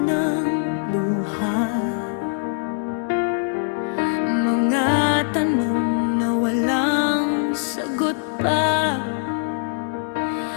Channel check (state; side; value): silent; right; 64 dB below the other